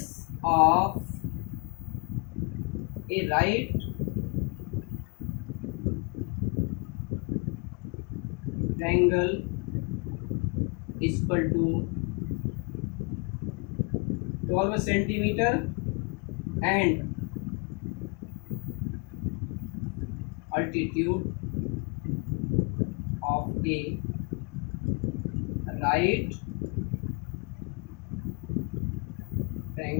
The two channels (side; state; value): right; quieter; 33.7 dB